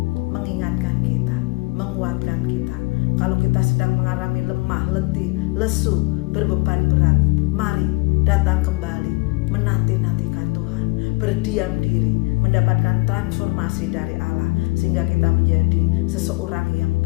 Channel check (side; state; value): right; quieter; 25.7 dB